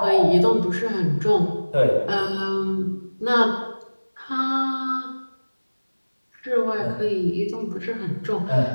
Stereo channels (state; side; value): inverted; both; correlation -1.00